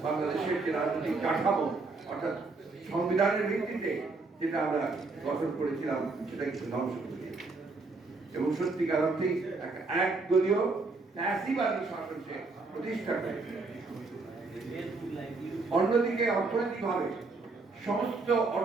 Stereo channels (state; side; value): quieter; left; 3.7 dB